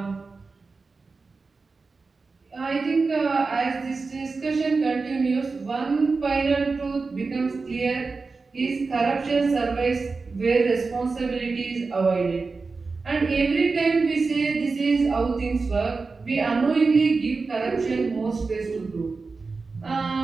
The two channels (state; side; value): quieter; left; 4.2 dB